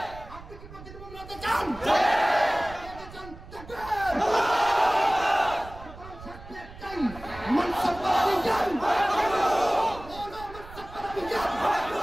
আপনি কি প্রকৃত মুমিন হতে চান?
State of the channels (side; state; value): right; noise; rumble, 16 dB below the sound